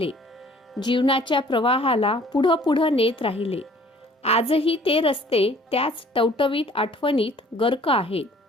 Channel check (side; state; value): both; normal; correlation 0.55